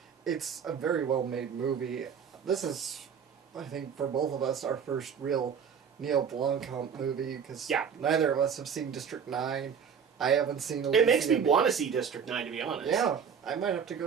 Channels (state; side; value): quieter; left; 7.1 dB